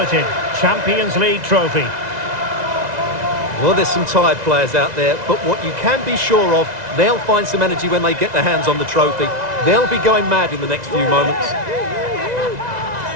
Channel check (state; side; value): late; left; 2.0 ms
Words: Champions League trophy. Well, there's some tired players out there, but what you can be sure of, they'll find some energy when they get their hands on the trophy. They'll be going mad in the next few moments.